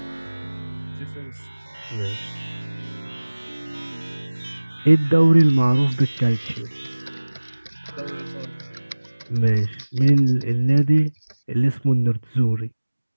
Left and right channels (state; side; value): inverted; both; correlation -1.00